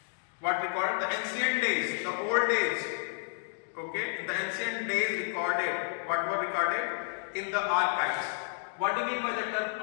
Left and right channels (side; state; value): right; silent; digital silence